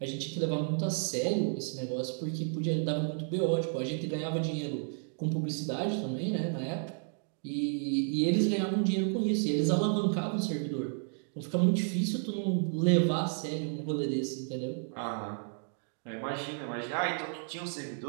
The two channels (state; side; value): silent; left; 56 dB below the other